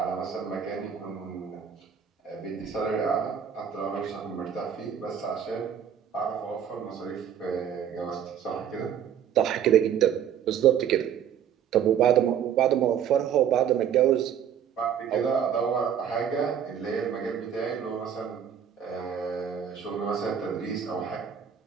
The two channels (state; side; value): quieter; left; 8.7 dB